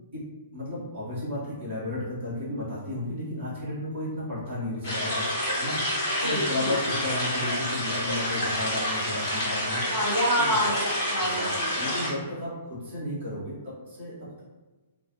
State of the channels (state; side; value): inverted; both; correlation -0.41